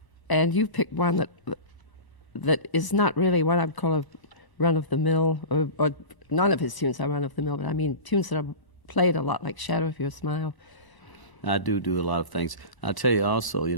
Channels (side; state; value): right; late; 1.0 ms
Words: and you picked one that is not really what I would call a run-of-the-mill, or none of his tunes are run-of-the-mill, but I mean tunes that are played a lot, like Shadow of Your Smile. I do a lot of things. I'll tell you also, you